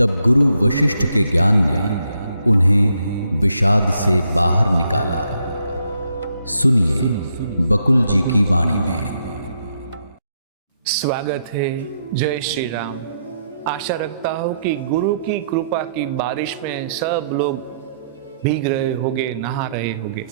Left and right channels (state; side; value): inverted; both; correlation -0.75